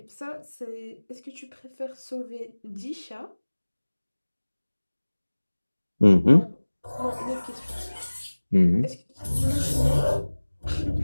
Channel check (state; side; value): inverted; both; correlation -1.00